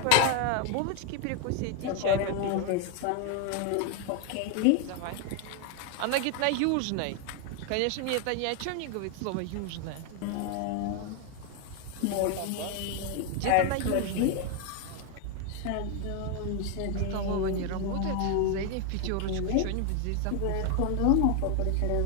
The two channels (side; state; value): both; different; correlation 0.01